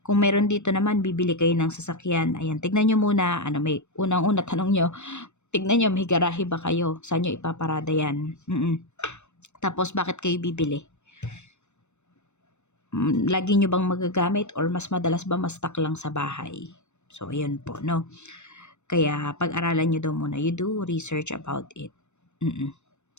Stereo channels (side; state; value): right; late; 0.83 ms